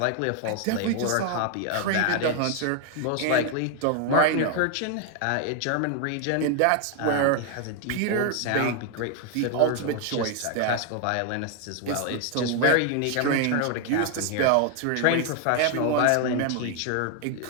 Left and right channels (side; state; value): both; different; correlation 0.00